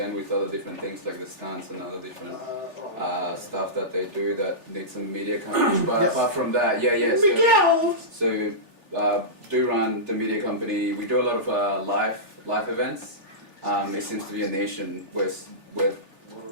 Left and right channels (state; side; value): late; left; 3.4 ms